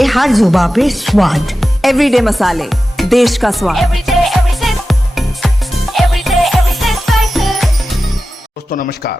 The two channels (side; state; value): both; normal; correlation 0.94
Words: हर जुबान पे स्वाद। एवरीडे मसाले, देश का स्वाद। दोस्तों नमस्कार,